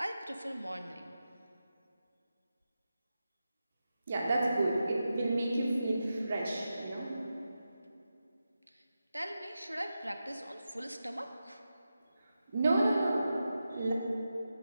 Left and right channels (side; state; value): both; inverted; correlation -0.91